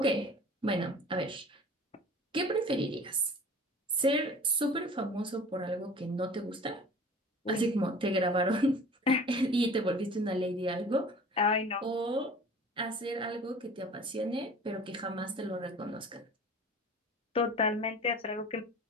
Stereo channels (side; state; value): both; normal; correlation 0.43